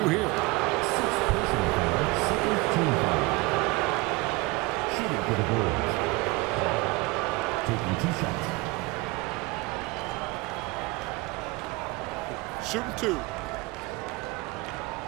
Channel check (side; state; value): left; quieter; 23.0 dB